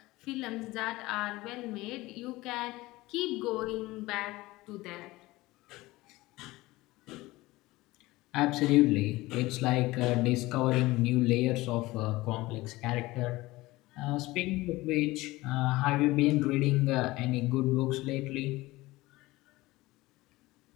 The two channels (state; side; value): quieter; right; 19.6 dB